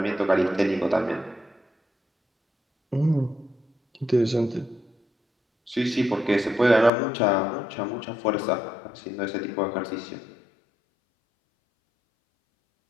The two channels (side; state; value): right; drops out; at 6.9 s